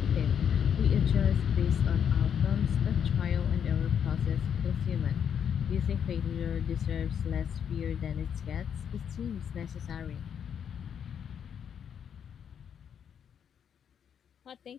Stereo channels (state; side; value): quieter; right; 8.1 dB